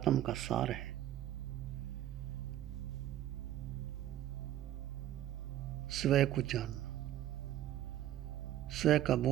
का सार है स्वयं को जानना, स्वयं का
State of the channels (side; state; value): left; quieter; 12.8 dB